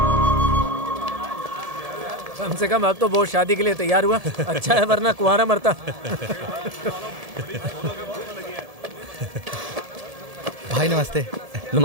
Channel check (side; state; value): left; late; 1.7 ms